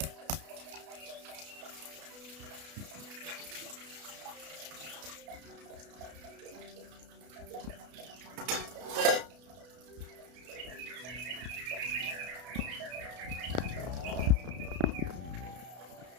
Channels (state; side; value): late; left; 33 ms